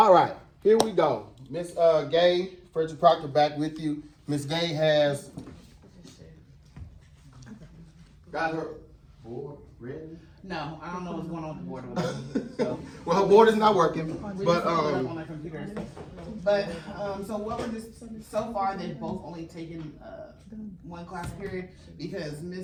right, here we go. Miss Gay, Frederick Proctor back with you. Miss Gay has got her board ready. No, I don't know what's going on with the board over there. So, Well, her board is not working, we but just pulled it up on our computers. But so what we're just so far they've both only taken one class period because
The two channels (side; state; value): both; identical; correlation 1.00